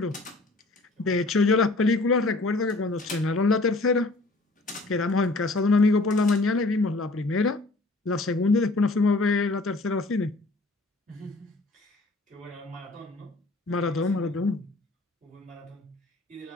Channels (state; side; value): quieter; right; 3.1 dB